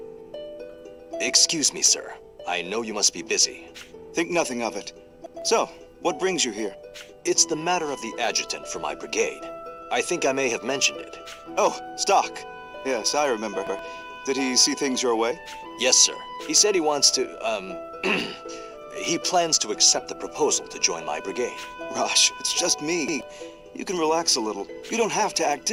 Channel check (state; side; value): identical; both; correlation 1.00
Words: Excuse me, sir. I know you must be busy. Think nothing of it. So, what brings you here? It's the matter of the adjutant for my brigade. I think I may have mentioned it. Oh, Stock. Yes, I remember. Did he see things your way? Yes, sir. He said he wants to, he plans to accept the proposal to join my brigade. Rush, it's just me. You can relax a little. You don't have to act